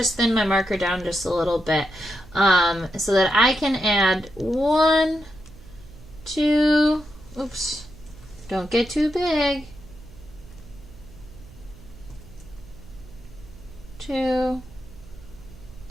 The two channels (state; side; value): noise; right; hum, 20 dB below the sound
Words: thin my marker down just a little bit so that I can add 1, 2, oops, don't get too big, 2,